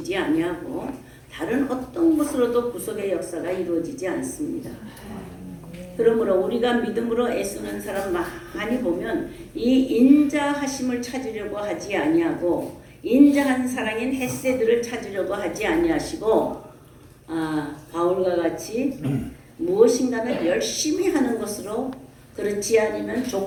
아니하고 다른 어떤 것으로도 구속의 역사가 이루어지지 않습니다. 그러므로 우리가 믿음으로 애쓰는 사람 많이 보면 이 인자하심을 찾으려고 하지 아니하고 인자한 사랑인 헤세드를 찾으려고 하지 아니하시고 바울과 같이 무엇인가를 열심히 하는 것으로, 그렇지 않으면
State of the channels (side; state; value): both; identical; correlation 1.00